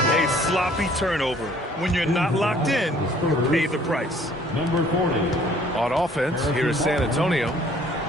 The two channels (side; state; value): both; normal; correlation 0.57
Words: sloppy turnover. When you're not locked in, you pay the price. Number 40. On offense, here is San Antonio.